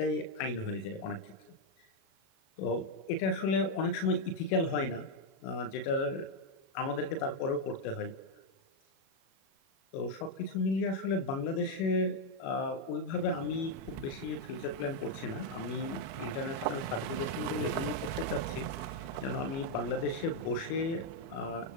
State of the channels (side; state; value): right; late; 36 ms